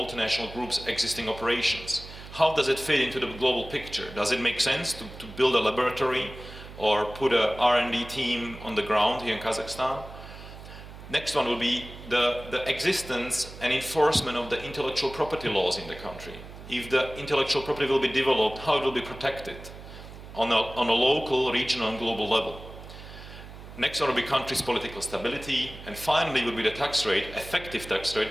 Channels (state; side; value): noise; right; hum, 15 dB below the sound